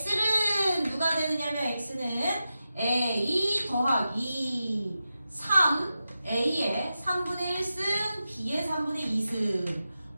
누가 되느냐면 X는 A 더하기 3 A의 3분의 1승 B의 3분의 2승.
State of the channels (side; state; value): both; inverted; correlation -0.91